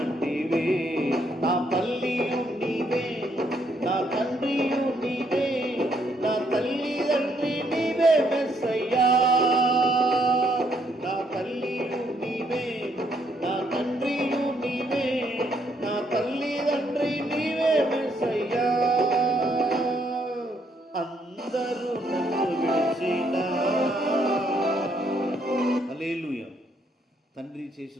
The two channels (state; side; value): normal; both; correlation 0.72